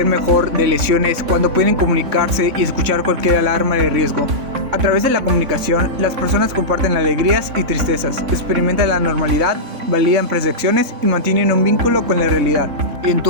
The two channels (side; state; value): left; late; 3.5 ms